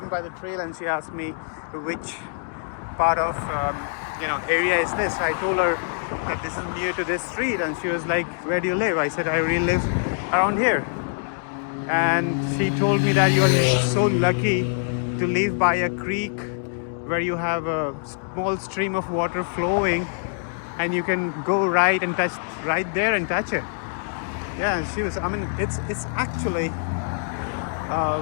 by the trail, and she asked me which part of, area is this. I told her that this is near to this street, and she was like, where do you live? I said, I really live around here. And she told me that you are so lucky to live by a creek where you have a small stream of water flowing, and you can go right and touch right there and touch it. Yeah, she was. I mean, it's actually,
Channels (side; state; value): right; silent; digital silence